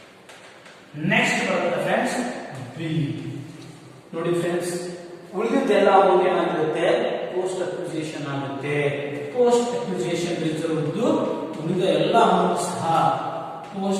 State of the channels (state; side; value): identical; both; correlation 1.00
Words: ನೆಕ್ಸ್ಟ್ ಬರುತ್ತೆ ಫ್ರೆಂಡ್ಸ್ ಬಿ. ನೋಡಿ ಫ್ರೆಂಡ್ಸ್, ಉಳಿದಿದ್ದೆಲ್ಲ ಅಮೌಂಟ್ ಏನಾಗಿರುತ್ತೆ? ಪೋಸ್ಟ್ ಅಕ್ವಿಸಿಷನ್ ಆಗುತ್ತೆ. ಪೋಸ್ಟ್ ಅಕ್ವಿಸಿಷನ್ ರಿಸರ್ವ್ ಉಳಿದ ಎಲ್ಲ ಅಮೌಂಟ್ ಸಹ